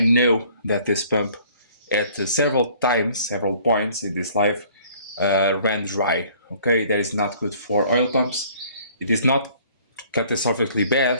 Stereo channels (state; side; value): inverted; both; correlation -0.55